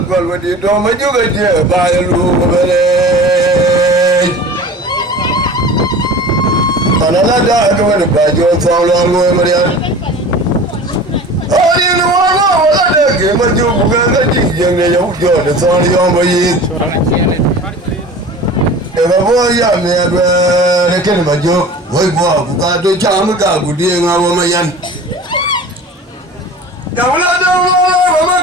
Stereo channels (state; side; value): normal; both; correlation 0.39